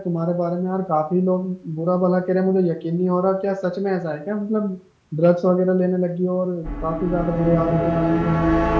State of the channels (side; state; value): both; identical; correlation 1.00